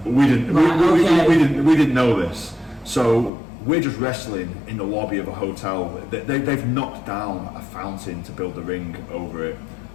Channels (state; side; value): drops out; right; at 3.3 s